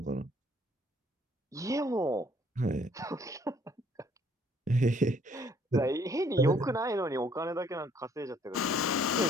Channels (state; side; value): normal; both; correlation 0.63